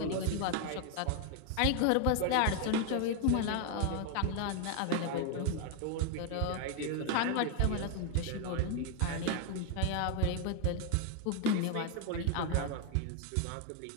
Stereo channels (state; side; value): different; both; correlation 0.01